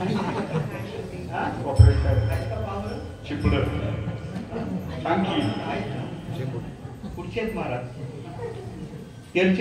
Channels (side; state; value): both; identical; correlation 1.00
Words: हा? चिपड सांगी कुठचे आहेत महाराज?